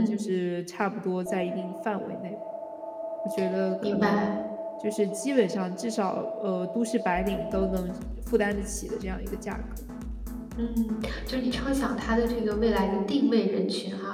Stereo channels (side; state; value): both; identical; correlation 1.00